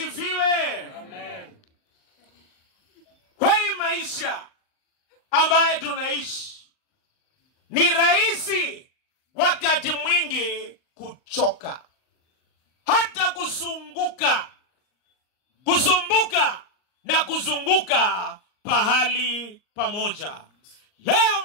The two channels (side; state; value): right; late; 39 ms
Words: Amen. Kwa hii maisha ambaye tunaishi, ni rahisi wakati mwingi kuchoka, hata kusumbuka na kuzunguka pahali pamoja.